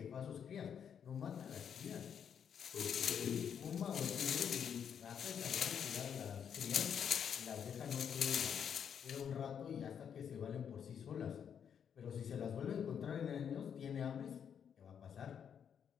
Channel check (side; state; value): right; quieter; 7.9 dB